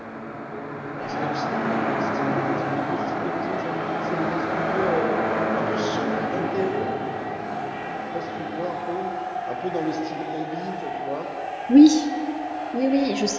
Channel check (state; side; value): identical; both; correlation 1.00